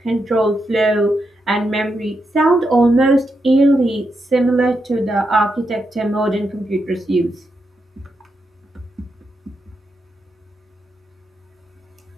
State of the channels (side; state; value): both; normal; correlation 0.84